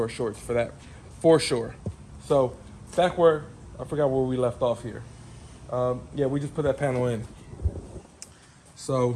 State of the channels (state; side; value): identical; both; correlation 1.00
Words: our shorts for that, for sure. So back where I forgot where we left off here. Yeah, we just put that panel in.